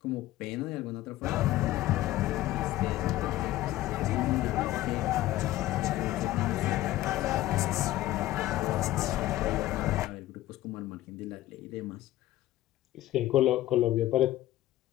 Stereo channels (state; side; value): quieter; right; 15.5 dB